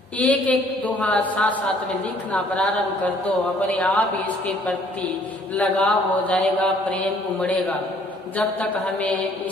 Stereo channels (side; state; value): both; normal; correlation 0.60